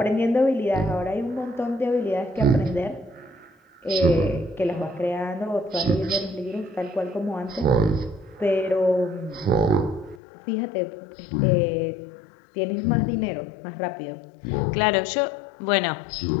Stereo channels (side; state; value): right; drops out; at 10.2 s